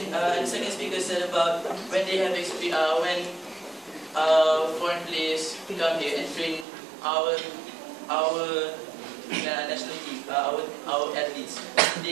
second speaker said about when they have when foreign players come here and train our national team, our athletes,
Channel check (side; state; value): left; drops out; at 6.7 s